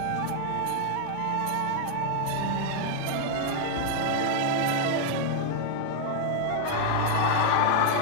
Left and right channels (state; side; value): different; both; correlation 0.00